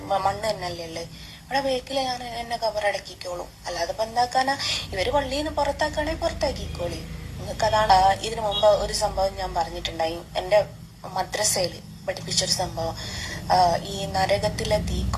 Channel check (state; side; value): identical; both; correlation 1.00